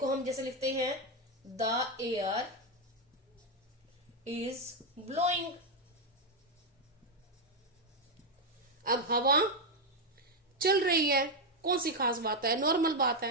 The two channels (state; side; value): normal; both; correlation 0.04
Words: हम जैसे लिखते हैं द एयर इज ब्लोइंग। अब हवा चल रही है, कौन सी खास बात है, नॉर्मल बात